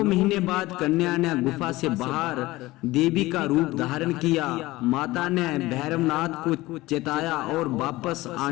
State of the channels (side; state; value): right; quieter; 19.0 dB